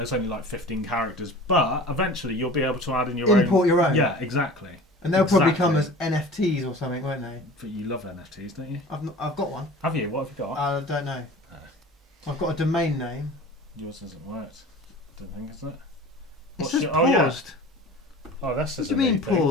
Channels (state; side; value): normal; both; correlation 0.40